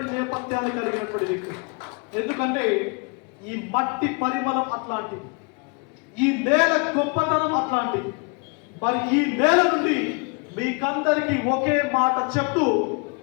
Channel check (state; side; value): quieter; right; 32.2 dB